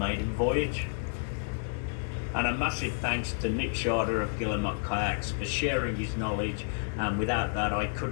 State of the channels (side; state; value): right; silent; digital silence